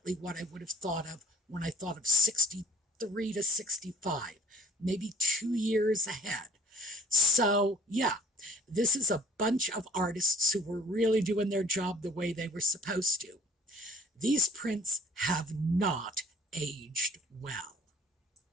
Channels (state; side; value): normal; both; correlation 0.53